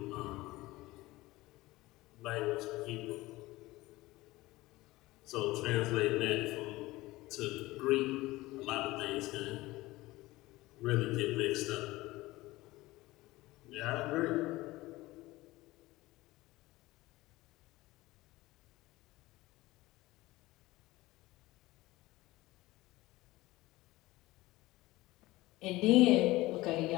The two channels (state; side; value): quieter; right; 19.2 dB